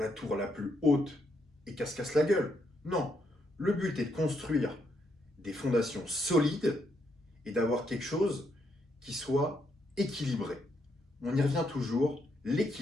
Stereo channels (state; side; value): normal; both; correlation 0.77